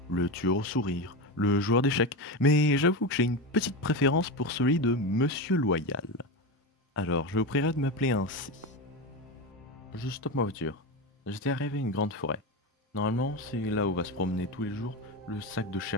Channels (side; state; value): both; normal; correlation 0.18